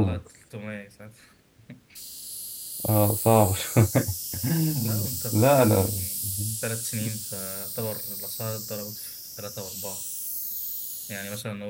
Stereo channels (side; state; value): both; identical; correlation 1.00